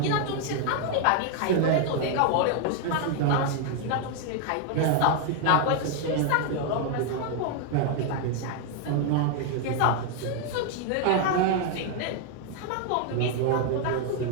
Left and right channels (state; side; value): different; both; correlation 0.00